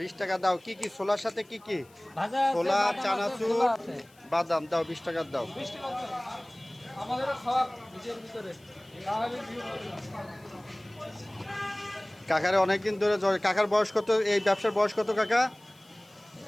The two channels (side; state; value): left; noise; hiss, 29 dB below the sound